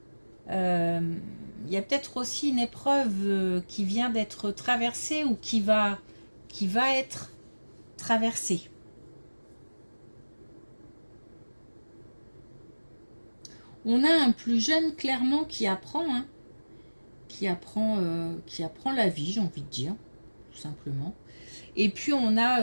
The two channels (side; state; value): both; inverted; correlation -1.00